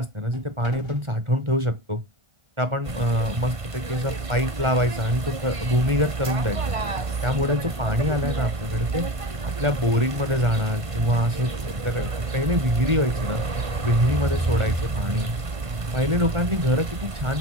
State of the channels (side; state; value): left; late; 1.5 ms